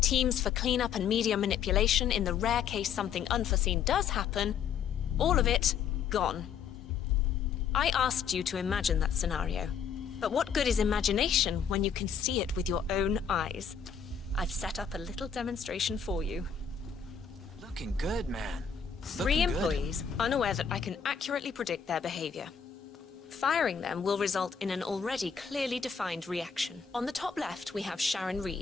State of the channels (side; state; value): right; quieter; 7.0 dB